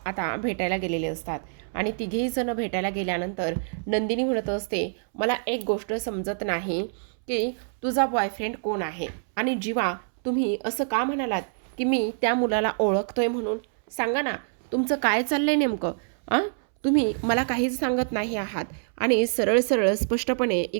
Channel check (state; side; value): silent; left; 61 dB below the other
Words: भेटायला गेलेले असतात आणि तिघेही जण भेटायला गेल्यानंतर नंदिनी म्हणत असते, मला एक गोष्ट समजत नाही की तुझा बॉयफ्रेंड कोण आहे आणि जीवा तुम्ही असं का म्हणालात की मी त्या मुलाला ओळखतोय म्हणून? सांगा ना, तुमचं काय चाललंय नेमकं? तुम्ही मला काहीच सांगत नाही आहात आणि सरळ सरळ स्पष्टपणे